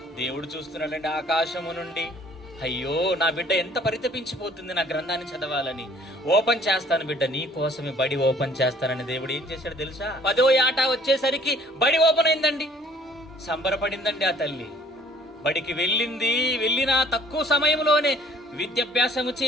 దేవుడు చూస్తున్నాడండి ఆకాశము నుండి. అయ్యో, నా బిడ్డ ఎంత పరితపించిపోతుంది నా గ్రంథాన్ని చదవాలని. ఓపెన్ చేస్తాను బిడ్డ, నీ కోసమే బడి ఓపెన్ చేస్తానని దేవుడు ఏం చేశాడు తెలుసా? 10వ ఏట వచ్చేసరికి బడి ఓపెన్ అయిందండి. సంబరపడిందండి ఆ తల్లి. బడికి వెళ్ళిన తక్కువ సమయంలోనే విద్యాభ్యాసము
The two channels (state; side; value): normal; both; correlation 0.57